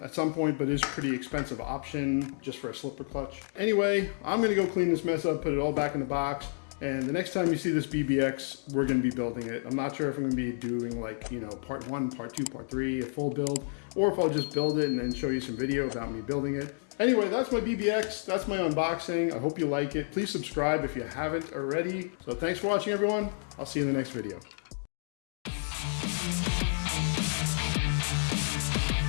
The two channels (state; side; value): silent; right; digital silence